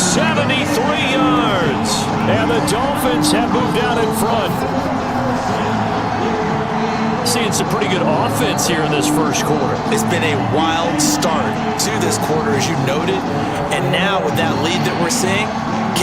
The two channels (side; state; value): both; identical; correlation 1.00